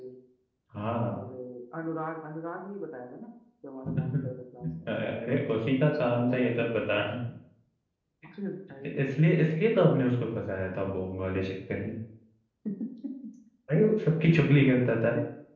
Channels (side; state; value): both; identical; correlation 1.00